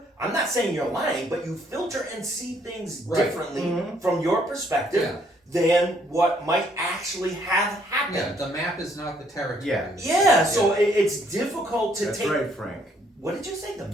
I'm not saying you're lying, but you filter and see things Right. differently from your perspective than what might actually have happened. Yeah, the map is not the territory. Yeah. So it's difficult to That's take. right, Frank. What did you say? The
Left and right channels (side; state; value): both; normal; correlation 0.67